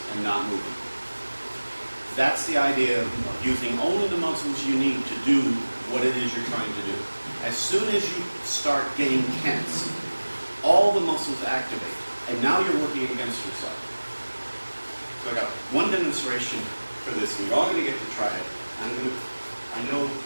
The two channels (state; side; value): inverted; both; correlation -1.00